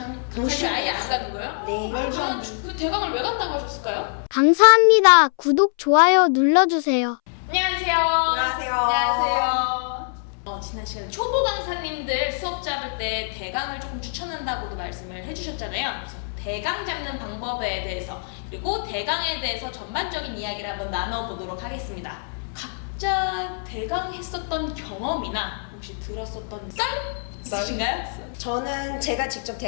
아예 안 가는 거예요? 네. 그러면 그 대강을 왜 간다고 하셨을까요? 감사합니다. 구독, 좋아요 눌러주세요. 안녕하세요. 안녕하세요. 안녕하세요. 지난 시간에 초보 강사님들 수업 잡을 때 대강을 조금 추천한다고도 말씀을 해주셨잖아요. 그래서 대강 잡는 방법에 대해서 그리고 대강에 대해서 전반적인 이야기를 한번 나눠보도록 하겠습니다. 각자 대강 했었던 경험이나 혹시 들었었던 썰 있으신가요? 저는 제가 직접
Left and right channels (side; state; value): right; silent; 63 dB below the other